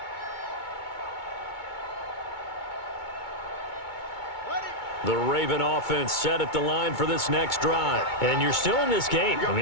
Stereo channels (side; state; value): right; late; 2.2 ms